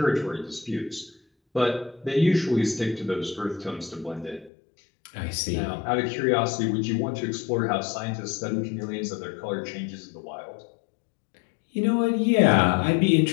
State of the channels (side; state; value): right; drops out; at 4.5 s